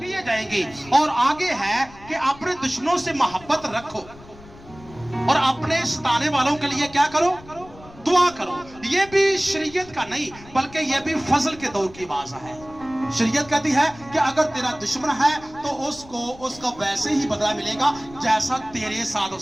किए जाएंगे। और आगे है कि अपने दुश्मनों से मोहब्बत रखो और अपने सताने वालों के लिए क्या करो, दुआ करो। ये भी शरीयत का नहीं बल्कि ये भी फजल के दौर की बात है। शरीयत कहती है कि अगर तेरा दुश्मन है तो उसका वैसे ही बदला मिलेगा जैसा तेरे साथ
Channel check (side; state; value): left; noise; rumble, 21 dB below the sound